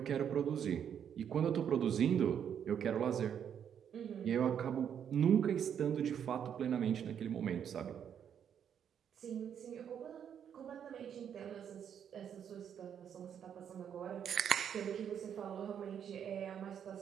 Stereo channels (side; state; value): left; quieter; 8.5 dB